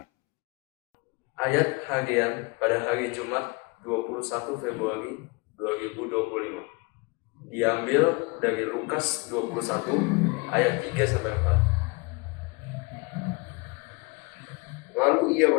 Ayat harian pada hari Jumat 21 Februari 2025 diambil dari Lukas 21 ayat 3-4. Lalu ia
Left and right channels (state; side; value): quieter; right; 28.4 dB